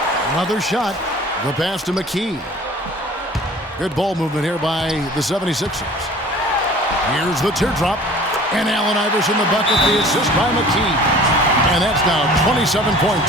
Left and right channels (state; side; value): normal; both; correlation 0.46